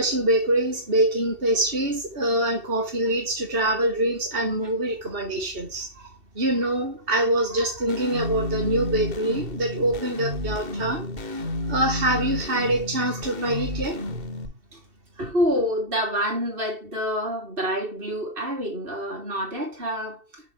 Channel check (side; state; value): left; late; 2.7 ms